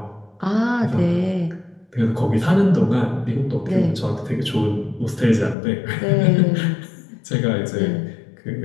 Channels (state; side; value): drops out; right; at 5.6 s